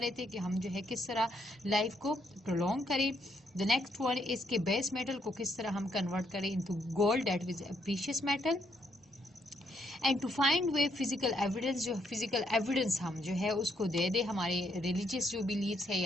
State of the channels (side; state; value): both; normal; correlation 0.74